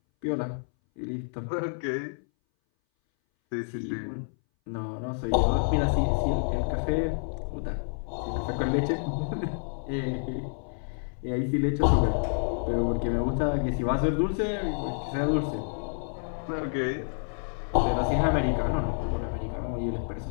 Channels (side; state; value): right; silent; 59 dB below the other